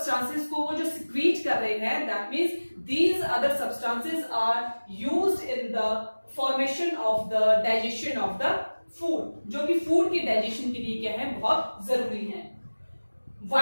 को वो जो secrete कर रहे हैं, that means these other substances are used in the formation of the digestion of the food, जो कि फूड की डाइजेशन के लिए क्या है, बहुत जरूरी है.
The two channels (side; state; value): both; inverted; correlation -1.00